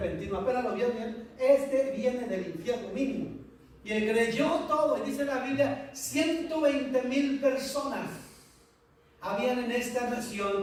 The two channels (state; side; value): identical; both; correlation 1.00